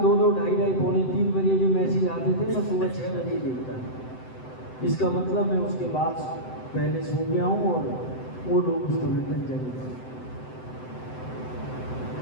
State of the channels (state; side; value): late; right; 7.8 ms